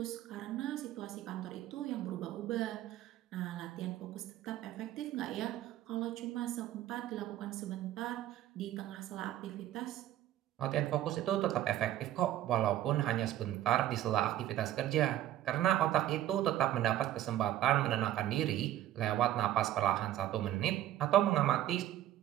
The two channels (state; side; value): quieter; left; 13.1 dB